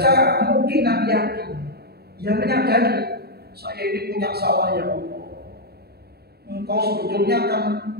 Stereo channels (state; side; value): late; left; 0.46 ms